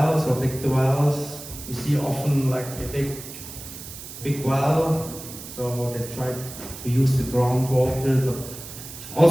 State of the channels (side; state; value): right; noise; hiss, 13 dB below the sound